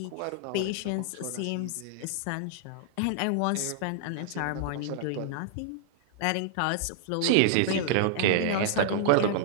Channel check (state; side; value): different; both; correlation -0.01